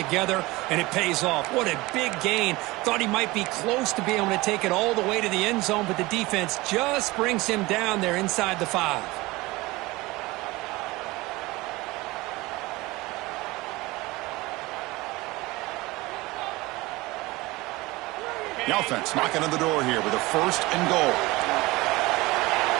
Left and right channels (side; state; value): left; quieter; 21.2 dB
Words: and it pays off. What a big gain. Thought he might be close to being able to take it all the way to the end zone, but the defense just brings him down there inside the 5. The offense knocking on the door here with a 1st and goal.